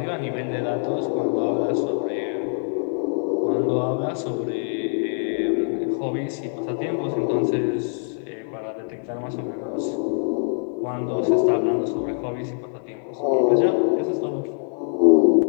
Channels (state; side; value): silent; right; 63 dB below the other